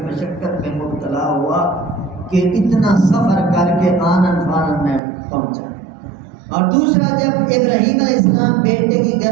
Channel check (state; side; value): drops out; left; at 5.0 s